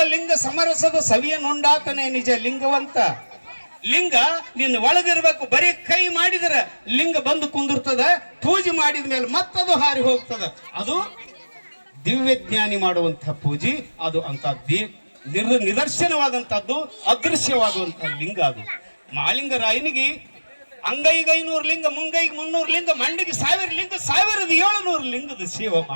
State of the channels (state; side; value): inverted; both; correlation -1.00